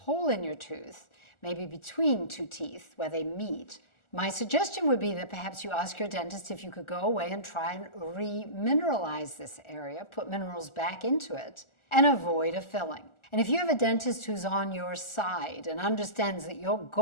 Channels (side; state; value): right; late; 1.4 ms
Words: in your tooth, maybe between two teeth where they meet, my suggestion would be that perhaps you ask your dentist if you could go away and try and remineralize this area, put minerals back into it, and avoid a filling. And if you have a dentist who's on your side and understands that your